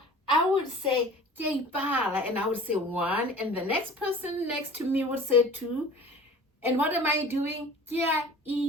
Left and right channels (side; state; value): both; normal; correlation 0.43